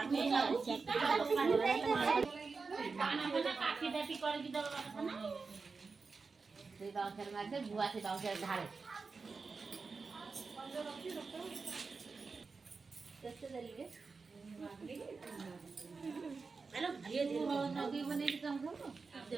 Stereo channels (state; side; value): quieter; left; 4.5 dB